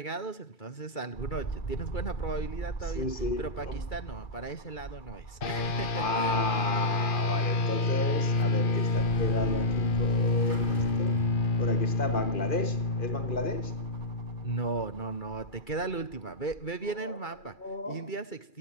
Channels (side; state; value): right; late; 2.4 ms